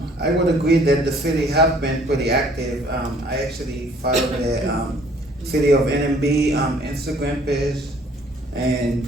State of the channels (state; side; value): normal; both; correlation 0.58